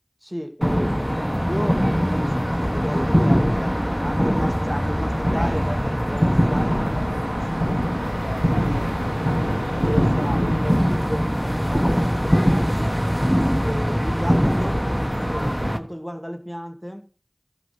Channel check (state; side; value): identical; both; correlation 1.00